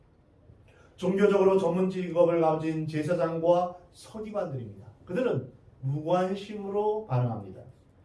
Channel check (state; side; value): identical; both; correlation 1.00